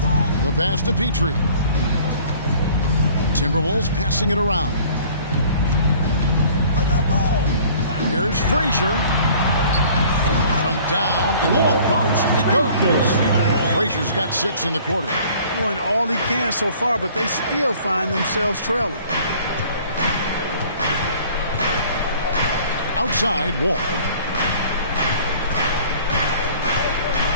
The pass to Petrie. Timberwolves passing it around. Here's Frazier. From down in the low post, it goes. Frazier's got 6 in the quarter. Doing all he can so far, but they still find themselves trailing. Outside Wall.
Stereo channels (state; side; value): inverted; both; correlation -0.52